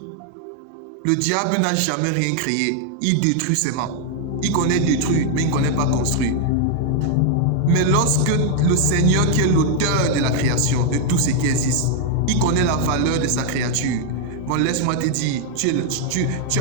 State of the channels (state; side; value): different; both; correlation 0.00